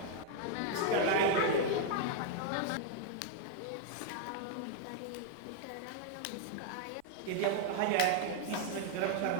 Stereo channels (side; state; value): both; different; correlation -0.01